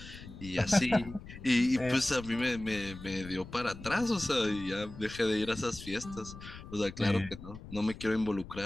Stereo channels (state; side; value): noise; left; rumble, 14 dB below the sound